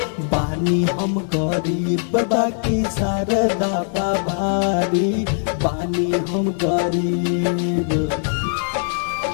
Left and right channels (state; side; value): silent; right; digital silence